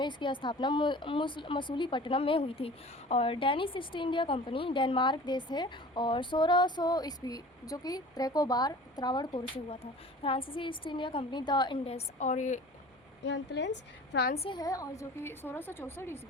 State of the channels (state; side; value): normal; both; correlation 0.42